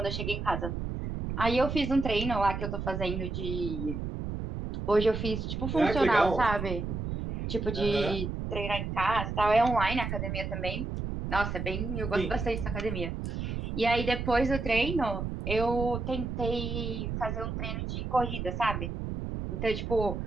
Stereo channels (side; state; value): right; noise; rumble, 4 dB below the sound